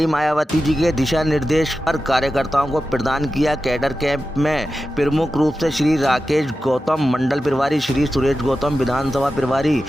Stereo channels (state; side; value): normal; both; correlation 0.92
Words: मायावती जी के दिशा निर्देश पर कार्यकर्ताओं को प्रदान किया। कैडर कैंप में प्रमुख रूप से श्री राकेश गौतम मंडल प्रभारी, श्री सुरेश गौतम विधानसभा प्रभारी,